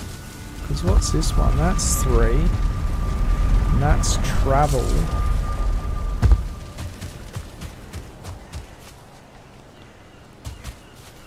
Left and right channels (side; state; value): both; identical; correlation 1.00